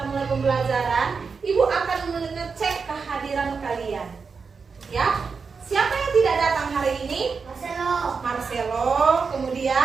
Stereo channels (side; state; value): left; quieter; 5.2 dB